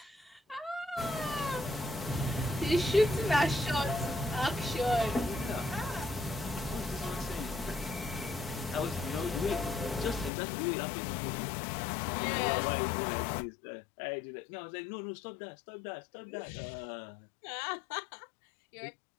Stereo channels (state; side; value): drops out; right; at 10.3 s